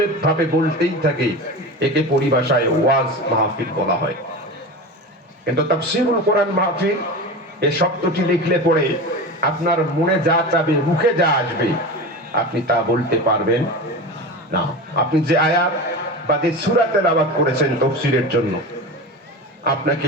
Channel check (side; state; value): both; normal; correlation 0.28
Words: ভাবে বলতেই থাকে। একে পরিভাষায় ওয়াজ মাহফিল বলা হয়। কিন্তু তাফসীরুল কোরআন মাহফিল এই শব্দটি লিখলে পরে আপনার মনে যা চাবে, মুখে যা আসবে, আপনি তা বলতে পারবেন না। আপনি যে আয়াত বা যে সূরা তেলাওয়াত করেছেন তাফসীরের জন্য,